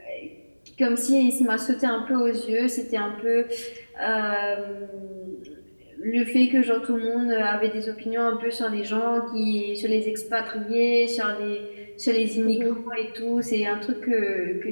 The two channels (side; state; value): both; inverted; correlation -1.00